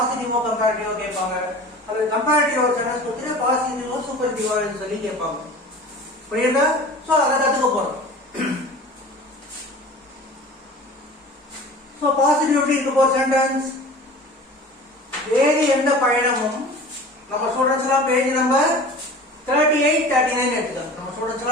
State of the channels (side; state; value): both; normal; correlation 0.40